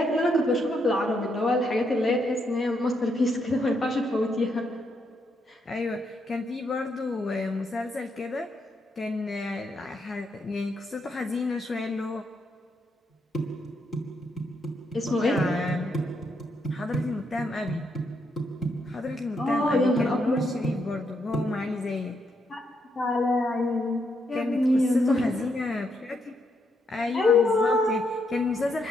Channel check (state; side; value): normal; both; correlation 0.78